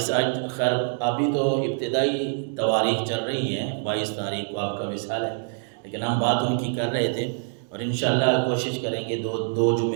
آج خیر ابھی تو ابتدائی تواریخ چل رہی ہیں، 22 تاریخ کو آپ کا وصال ہے، لیکن ہم بات ان کی کر رہے تھے، اور انشاءاللہ کوشش کریں گے دو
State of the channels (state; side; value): silent; left; 61 dB below the other